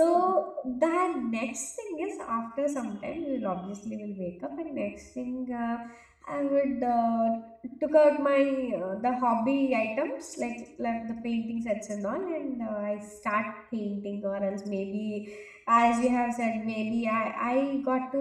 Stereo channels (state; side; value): identical; both; correlation 1.00